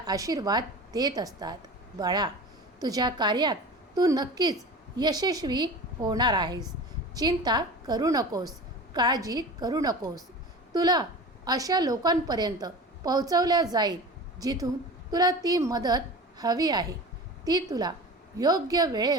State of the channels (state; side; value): normal; both; correlation 0.35